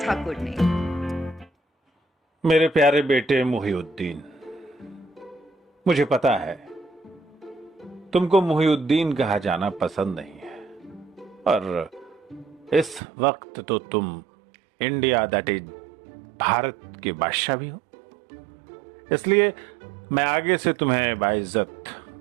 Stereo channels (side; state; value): left; drops out; at 13.0 s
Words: ने। मेरे प्यारे बेटे मुहिउद्दीन, मुझे पता है तुमको मुहिउद्दीन कहा जाना पसंद नहीं है, और इस वक्त तो तुम इंडिया दैट इज भारत के बादशाह भी हो। इसलिए मैं आगे से तुम्हें बाइज्जत